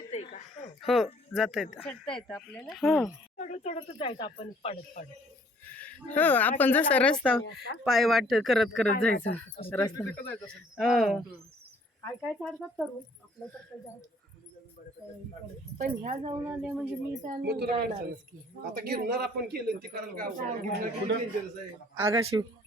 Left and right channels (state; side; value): normal; both; correlation 0.59